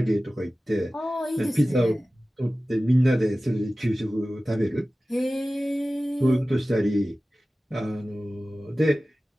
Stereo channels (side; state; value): both; normal; correlation 0.96